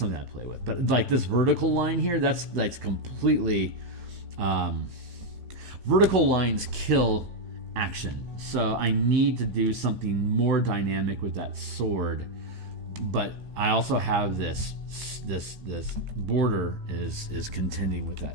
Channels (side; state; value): left; late; 16 ms